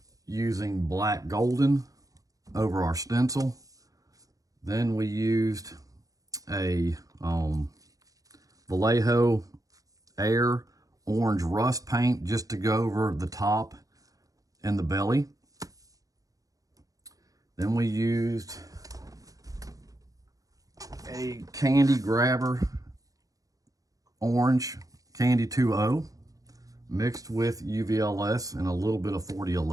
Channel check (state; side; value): late; left; 0.17 ms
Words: using black golden over our stencil. Then we used a Vallejo Air orange rust paint just to go over the top and the belly. Then we used a Candy Grabber orange Candy 2.0 mixed with UVLS and a little bit of